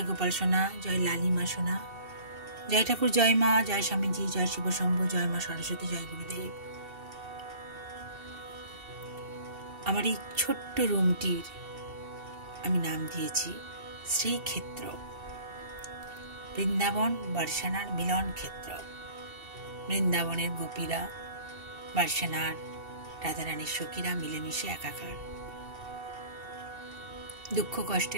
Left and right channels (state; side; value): late; left; 2.7 ms